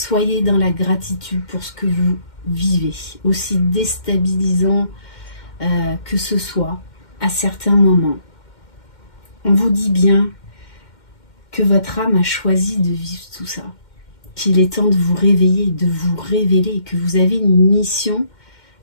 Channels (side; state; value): right; late; 2.1 ms